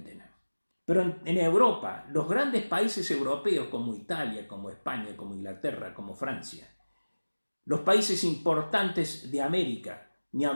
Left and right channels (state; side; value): inverted; both; correlation -1.00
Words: Pero en Europa, los grandes países europeos como Italia, como España, como Inglaterra, como Francia, los países importantes de América, ni